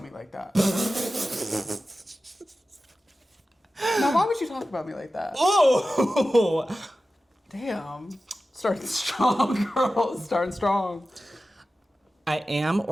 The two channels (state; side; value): normal; both; correlation 0.94